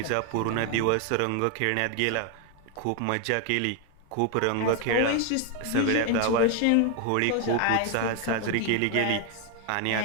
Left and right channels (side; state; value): both; different; correlation 0.01